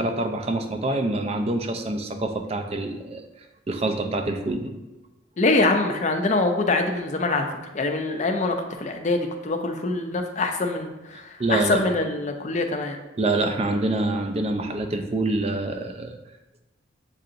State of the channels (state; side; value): normal; both; correlation 0.34